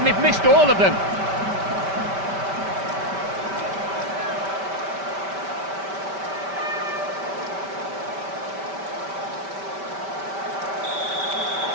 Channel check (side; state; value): left; late; 5.1 ms